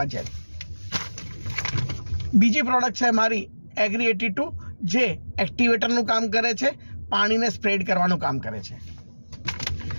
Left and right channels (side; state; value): both; inverted; correlation -1.00